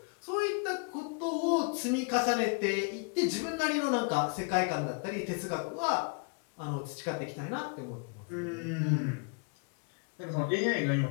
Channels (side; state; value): right; quieter; 34.7 dB